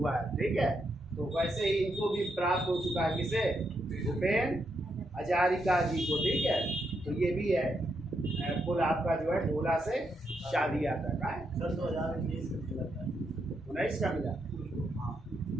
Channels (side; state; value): both; normal; correlation 0.80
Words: है, ठीक है। तो वैसे ही इनको भी प्राप्त हो चुका है। किसे? भूपेन हजारिका जी को, ठीक है। तो ये भी है पुल आपका जो है ढोला से शादिया तक है। 2019 का मिला